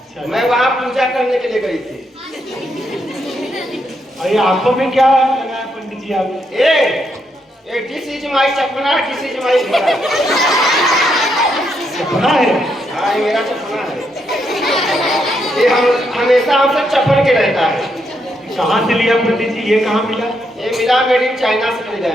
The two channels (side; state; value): both; normal; correlation 0.78